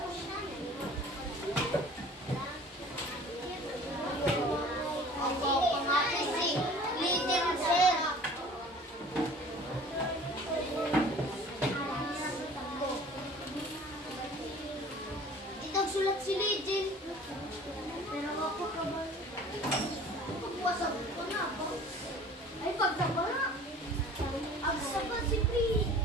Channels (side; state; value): both; normal; correlation 0.47